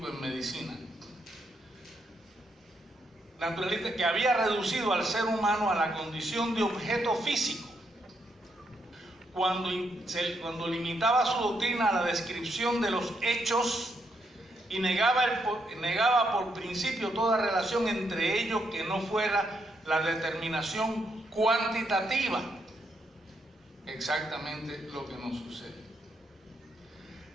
en medicina. Naturalista que había reducido al ser humano a la condición de objeto físico, cuando limitaba su doctrina a la descripción de los hechos y negaba por principio toda relación entre ellos que no fuera la determinación cuantitativa. Exactamente lo que nos sucede.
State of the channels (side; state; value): both; normal; correlation 0.78